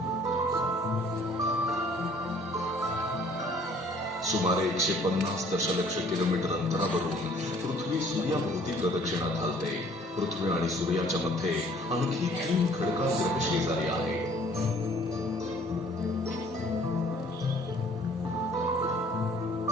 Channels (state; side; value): normal; both; correlation 0.57